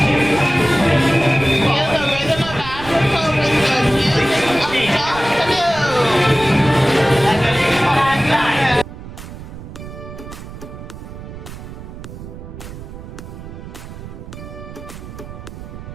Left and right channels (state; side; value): noise; right; rumble, 13 dB below the sound